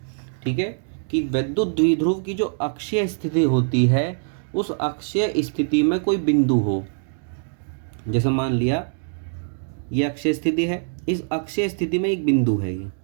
ठीक है, कि वैद्युत द्विध्रुव की जो अक्षीय स्थिति होती है उस अक्षीय स्थिति में कोई बिंदु हो। जैसे मान लिया ये अक्षीय स्थिति है, इस अक्षीय स्थिति में एक बिंदु है,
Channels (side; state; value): left; silent; digital silence